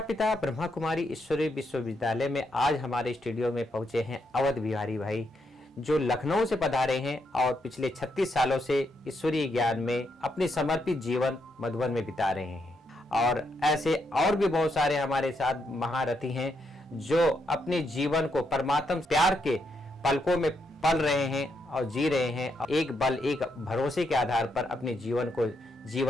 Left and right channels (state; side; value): normal; both; correlation 0.79